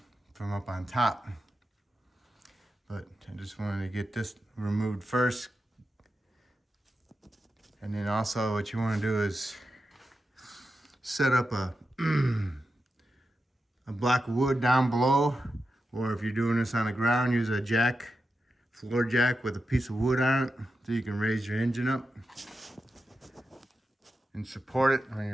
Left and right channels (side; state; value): both; normal; correlation 0.89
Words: from up on top. But I just wanted to get this removed first. And then also what you want to do is set up a block of wood down below, or if you're doing this on the ground, use a jack, floor jack with a piece of wood on it so you can raise your engine up and support it when you